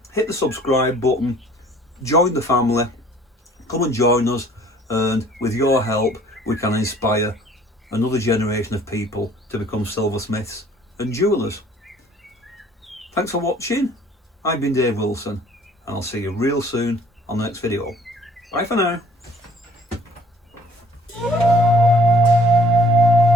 hit the subscribe button, join the family, come and join us, and with your help we can inspire another generation of people to become silversmiths and jewellers. Thanks for watching. I've been Dave Wilson, and I'll see you real soon on the next video. Bye for now.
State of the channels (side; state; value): both; normal; correlation 0.55